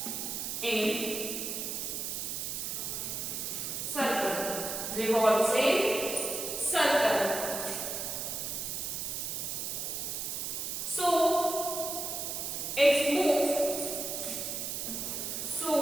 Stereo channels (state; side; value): noise; right; hiss, 3 dB below the sound